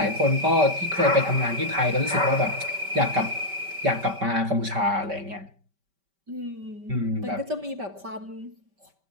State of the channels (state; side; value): late; left; 5.1 ms